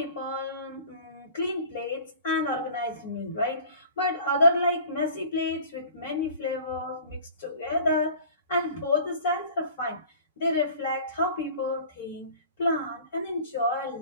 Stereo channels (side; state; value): both; inverted; correlation -0.45